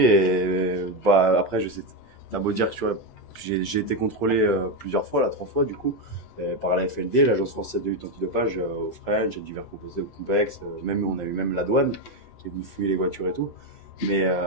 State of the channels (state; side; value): late; right; 7.9 ms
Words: bah, après, je sais, t'as beau dire que tu vois, j'ai été contrôlé plusieurs fois, 3 fois du coup, par la FLD, l'Agence française de lutte antidopage, au French, divers complexes, même on a eu même la douane qui est venue fouiller les voitures et tout. Mais